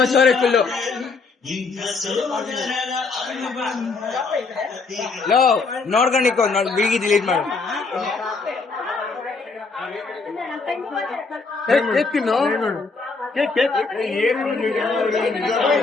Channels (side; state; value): right; quieter; 4.2 dB